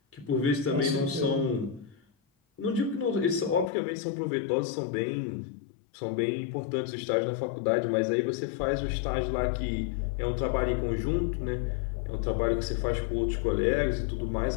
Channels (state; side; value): drops out; right; at 3.7 s